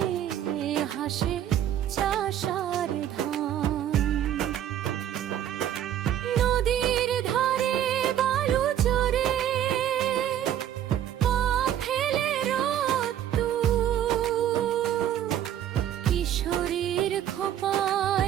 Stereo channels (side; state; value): left; quieter; 10.9 dB